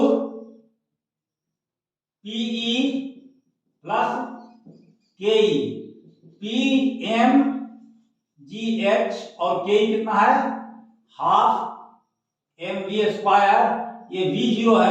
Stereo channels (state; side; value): identical; both; correlation 1.00